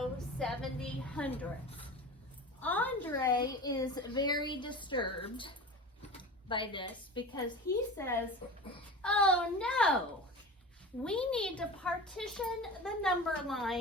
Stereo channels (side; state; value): both; normal; correlation 0.33